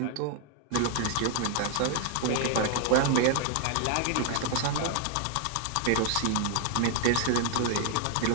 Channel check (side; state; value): both; different; correlation 0.00